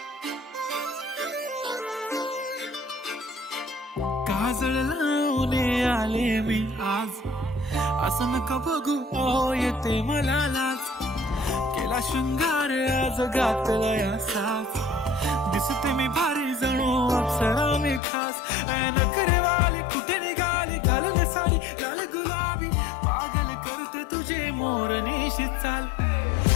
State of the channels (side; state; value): right; drops out; at 18.0 s